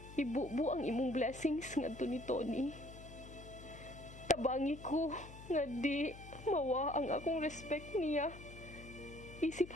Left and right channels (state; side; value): noise; left; hum, 15 dB below the sound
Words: Ibubu ang imong blessings ngadto ni Tony. Tabangi ko nga di mawa ang akong respect niya. Isip